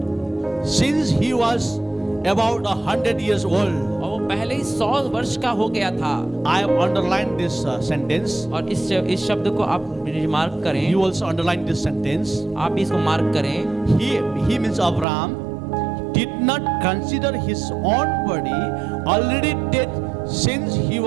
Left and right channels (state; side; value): drops out; left; at 15.1 s